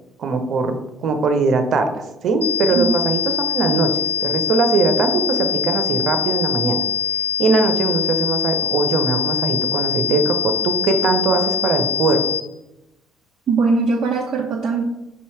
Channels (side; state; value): both; normal; correlation 0.31